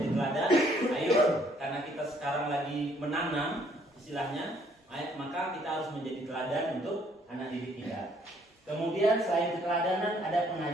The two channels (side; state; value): both; normal; correlation 0.64